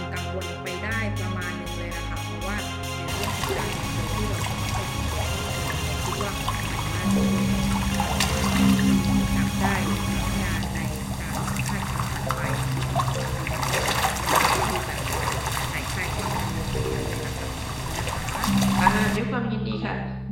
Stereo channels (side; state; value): both; identical; correlation 1.00